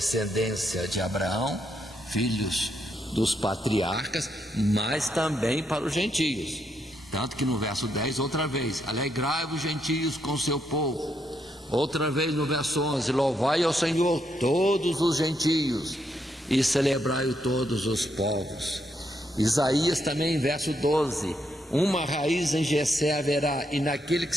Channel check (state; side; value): normal; both; correlation 0.78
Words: de Abraão, filhos dos patriarcas, mas também para os gentios. Tanto que no verso 10, outra vez, alegrai-vos gentios com seu povo. Outra vez no verso 11, louvai ao Senhor todos os gentios e celebrai-o todos os povos. Isaías também, verso 12, uma raiz em Jessé haverá, e naquele que